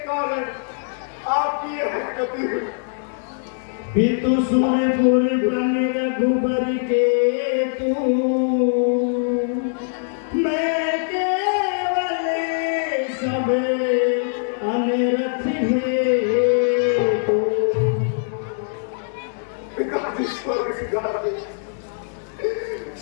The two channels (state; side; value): silent; right; digital silence